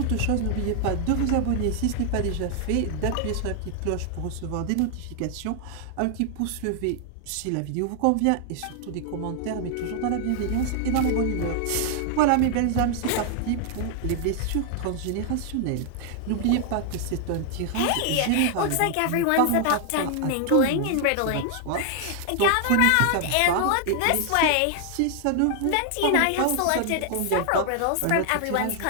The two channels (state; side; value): different; both; correlation 0.00